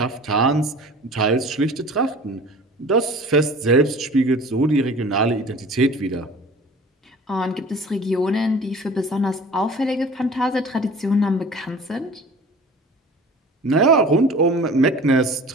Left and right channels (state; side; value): normal; both; correlation 0.43